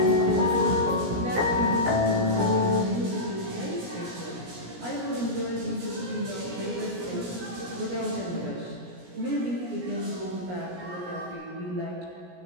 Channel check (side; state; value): left; late; 17 ms